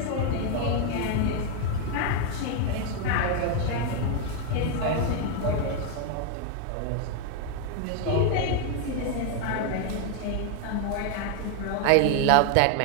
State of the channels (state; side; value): different; both; correlation 0.00